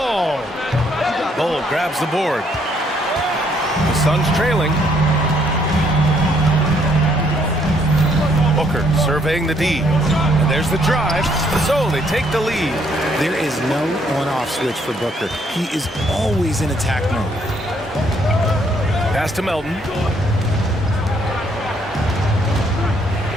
Bull grabs the board. The Suns trailing. Booker surveying the D. And there's the drive. So they take the lead. There is no on-off switch for Booker. He is always in attack mode. Pass to Melton.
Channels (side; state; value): both; normal; correlation 0.69